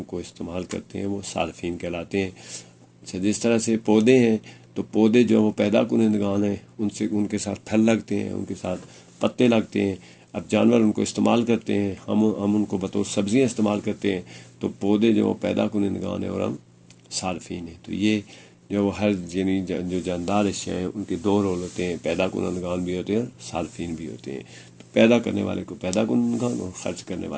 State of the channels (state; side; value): identical; both; correlation 1.00